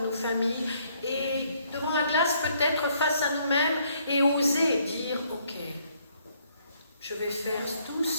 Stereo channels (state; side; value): inverted; both; correlation -0.68